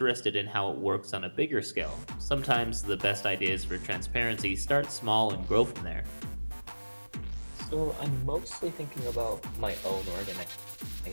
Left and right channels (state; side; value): inverted; both; correlation -1.00